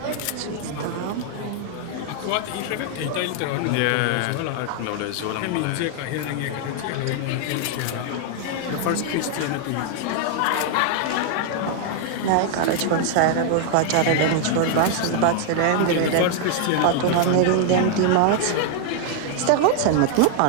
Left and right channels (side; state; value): both; different; correlation 0.00